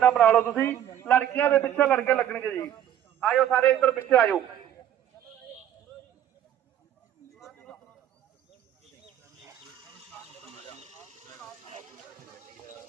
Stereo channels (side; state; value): left; quieter; 10.8 dB